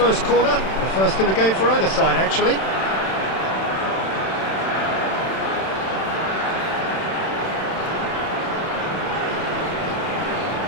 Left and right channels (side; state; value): right; late; 31 ms